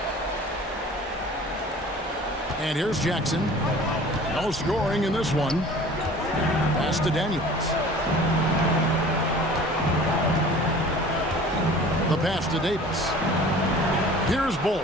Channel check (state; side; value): normal; both; correlation 0.45